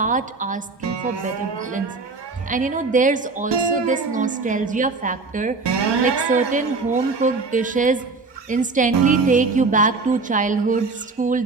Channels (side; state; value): left; quieter; 4.0 dB